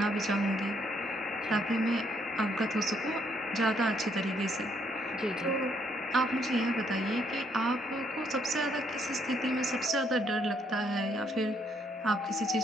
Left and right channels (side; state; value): both; normal; correlation 0.70